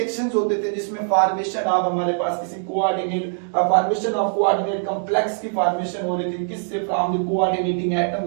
होते थे जिसमें फॉर्मेशन ऑफ हमारे पास किसी coordinate, formation of coordinate complex की फॉर्मेशन हो रही थी, किससे, फ्रॉम द कोऑर्डिनेटिंग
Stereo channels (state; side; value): silent; left; 64 dB below the other